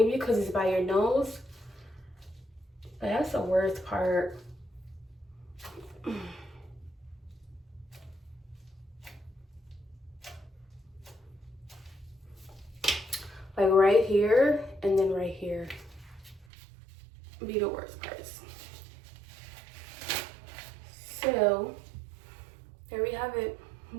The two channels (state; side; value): drops out; left; at 16.4 s